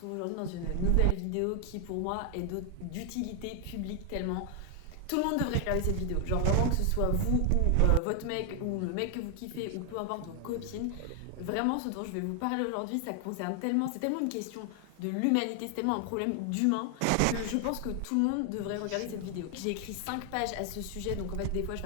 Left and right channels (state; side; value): different; both; correlation 0.00